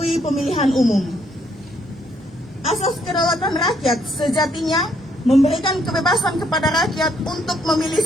pemilihan umum. Asas kedaulatan rakyat sejatinya memberikan kebebasan kepada rakyat untuk memilih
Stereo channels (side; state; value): both; normal; correlation 0.70